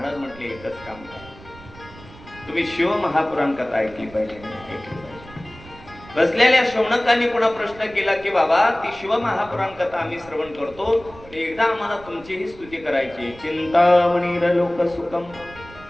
म्हटले एकच काम करा, तुम्ही शिव महापुराण कथा ऐकली पाहिजे. बसलेल्या शौनकांनी पुन्हा प्रश्न केला की बाबा ती शिव महापुराण कथा आम्ही श्रवण करतो, एकदा आम्हाला तुमचीही स्तुती करायची. चिंतामणीर लोक सुखम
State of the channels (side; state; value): right; noise; rumble, 20 dB below the sound